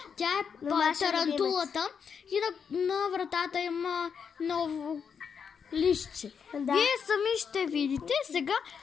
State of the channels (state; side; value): quieter; right; 6.7 dB